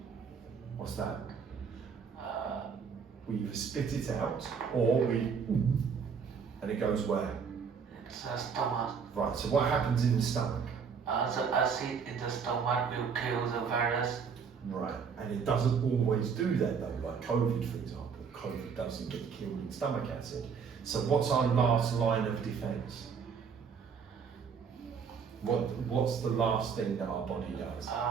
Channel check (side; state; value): left; quieter; 6.2 dB